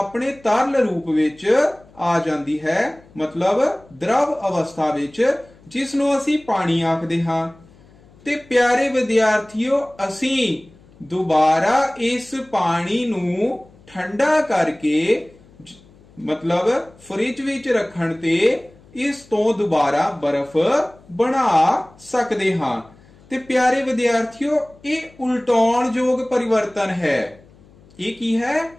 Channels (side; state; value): left; noise; hum, 27 dB below the sound